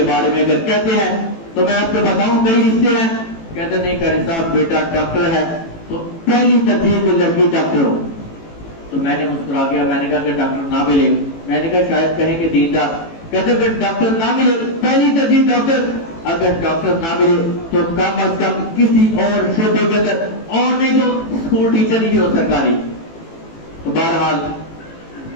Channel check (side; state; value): right; late; 18 ms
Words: بارے میں اگر کہتے ہیں تو میں آپ کو بتاؤں کئی رشتے ہیں. کہتے نہیں کرے صاحب بیٹا ڈاکٹر ہے تو پہلی ترجیح تو لڑکی ڈاکٹر ہو. تو میں نے مسکرا گیا، میں نے کہا کہ ڈاکٹر نہ ملے، میں نے کہا شاید کہیں کہ دیندار. کہتے کہ ڈاکٹر نہ ملے پہلی ترجیح ڈاکٹر، اگر ڈاکٹر نہ ملے تو کم از کم کسی اور شعبے کے اندر، اور نہیں تو اسکول ٹیچر ہی ہو سرکاری. تو بہرحال